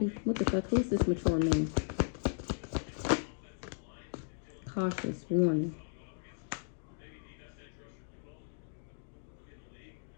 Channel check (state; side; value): silent; right; digital silence